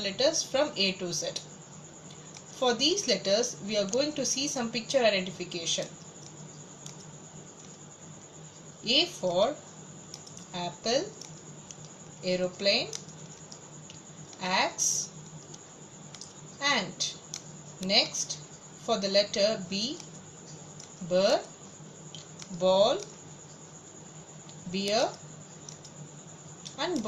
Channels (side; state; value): both; identical; correlation 1.00